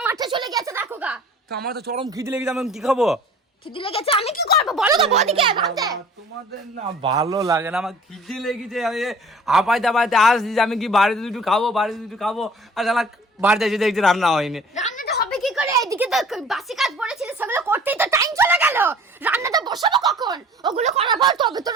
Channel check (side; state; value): both; normal; correlation 0.48